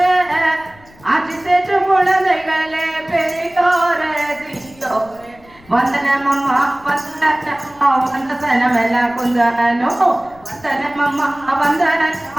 ஆட்சி சேற்று குழந்தைகளே பெரியோரே சிறியோரே. வந்தனமம்மா வந்தனம்மா வந்த சனமெல்லாம் குந்தனோ, வந்தனமம்மா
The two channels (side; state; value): left; noise; rumble, 26 dB below the sound